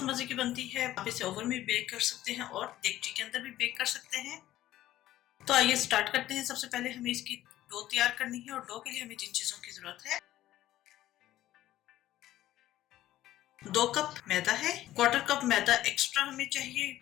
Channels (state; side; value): quieter; right; 14.2 dB